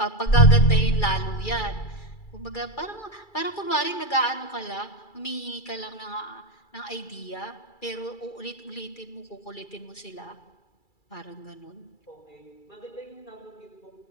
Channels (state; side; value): late; right; 2.3 ms